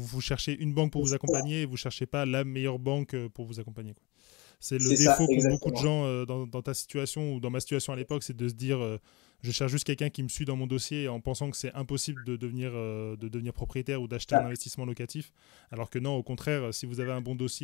cherchez une banque pour vous accompagner et vous cherchez pas la meilleure banque pour vous accompagner, quoi. C'est le défaut qu'ont beaucoup de gens dans ta situation ou dans ma situation à l'époque, c'est de se dire je cherche juste quelqu'un qui me suit dans mon dossier en pensant que c'est impossible de devenir propriétaire ou d'acheter un investissement locatif. Alors que non, au contraire, si vous avez un bon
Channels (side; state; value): right; quieter; 23.7 dB